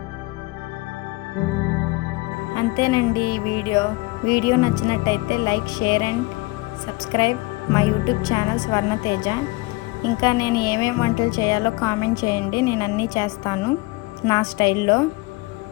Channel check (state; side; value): quieter; right; 23.0 dB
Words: అంతేనండి ఈ వీడియో నచ్చినట్టయితే లైక్, షేర్ అండ్ సబ్స్క్రైబ్ మా యూట్యూబ్ ఛానల్ స్వర్ణతేజ. ఇంకా నేను ఏమేమి వంటలు చేయాలో కామెంట్ చేయండి, నేను అన్నీ చేస్తాను నా స్టైల్లో.